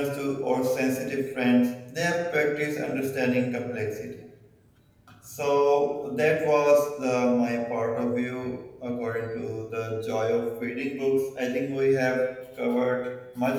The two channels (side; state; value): both; identical; correlation 1.00